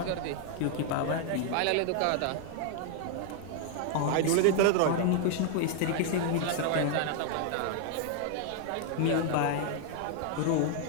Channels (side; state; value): both; different; correlation 0.00